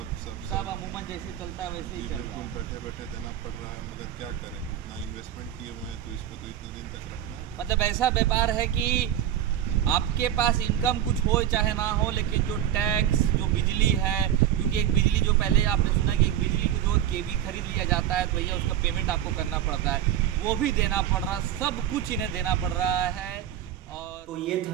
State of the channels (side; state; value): left; quieter; 11.0 dB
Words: सब अमूमन जैसे चलता है वैसे ही चल रहा है। बैठे बैठे देना पड़ रहा है, मगर क्या करें, इतना इन्वेस्टमेंट किए हुए हैं तो इस पर तो इतने दिन तक रखना है। मतलब ऐसा व्यापार है कि आपके पास इनकम कुछ हो चाहे ना हो, लेकिन जो टैक्स, जो बिजली है, क्योंकि एक बिजली जो पहले आपने सुना कि एक बिजली को जो केवी खरीद लिया जाता है तो भैया उसका पेमेंट आपको करना पड़ता है, वो भी देना पड़ रहा, सब कुछ इन्हें देना पड़ रहा है। और तो ये था